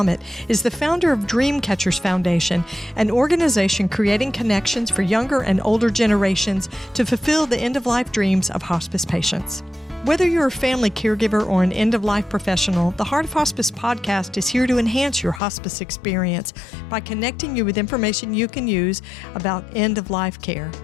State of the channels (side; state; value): right; drops out; at 15.4 s